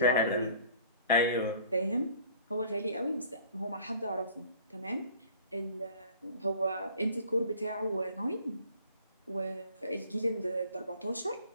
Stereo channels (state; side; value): inverted; both; correlation -0.51